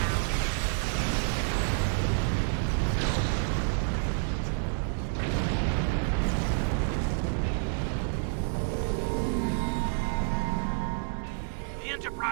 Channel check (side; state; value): left; silent; 59 dB below the other